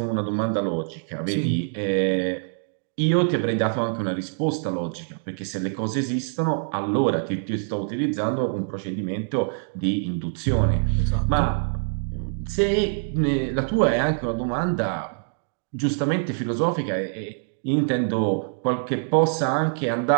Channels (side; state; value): left; silent; digital silence